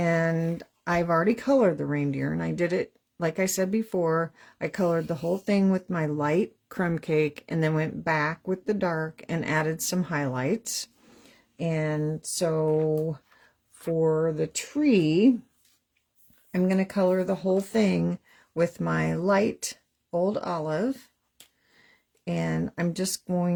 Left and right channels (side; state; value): both; identical; correlation 1.00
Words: I've already colored the reindeer, and I did it, like I said before, I colored the whole thing with my light crumb cake and then went back with the dark and added some highlights. And so for the tree, I'm going to color the whole thing with my light Old Olive. And I'm just